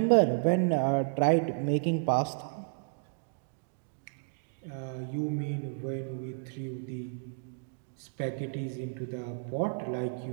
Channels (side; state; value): left; silent; digital silence